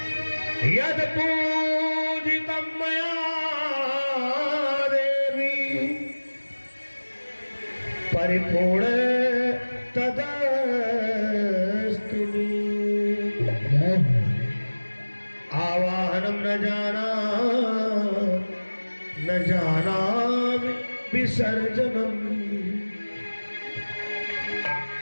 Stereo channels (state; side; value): inverted; both; correlation -1.00